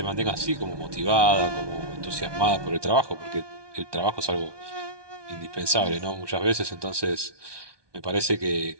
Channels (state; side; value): late; left; 1.2 ms